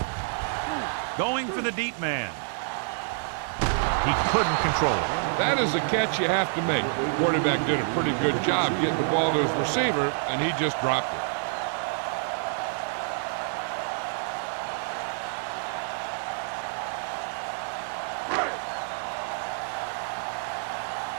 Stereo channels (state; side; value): silent; left; digital silence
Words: Going for the deep man. He couldn't control it. That is a catch you have to make. The quarterback did a pretty good job getting the ball to his receiver, and he just dropped it.